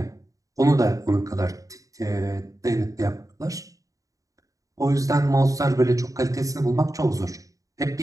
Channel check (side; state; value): left; late; 0.16 ms